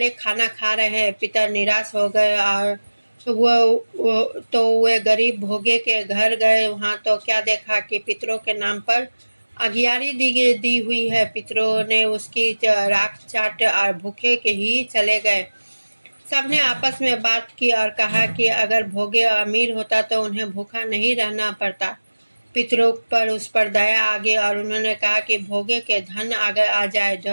खाना खा रहे हैं। पितर निराश हो गए और वे गरीब भोगे के घर गए। वहाँ तो क्या देखा कि पितरों के नाम पर अगियारी दी हुई है। पितरों ने उसकी राख चाट और भूखे के ही चले गए। सबने आपस में बात की और कहा कि अगर भोगे अमीर होता तो उन्हें भूखा नहीं रहना पड़ता। पितरों पर उस पर दया आ गई और उन्होंने कहा कि भोगे के धन आगे आ जाए।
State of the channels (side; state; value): both; inverted; correlation -1.00